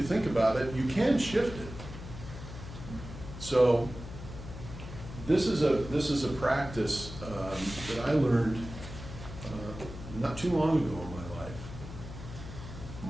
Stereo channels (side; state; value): left; noise; hum, 11 dB below the sound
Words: think about it, you can shift it. So this is a practice that I learned not too long ago in my life.